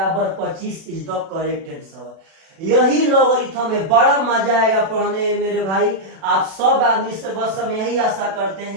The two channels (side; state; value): left; late; 36 ms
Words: 25 इज द करेक्ट आंसर। यही लॉगरिथम है। बड़ा मजा आएगा पढ़ने में मेरे भाई, आप सब आदमी से बस हम यही आशा करते